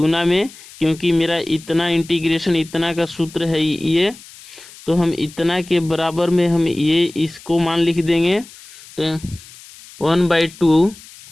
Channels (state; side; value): noise; left; hiss, 20 dB below the sound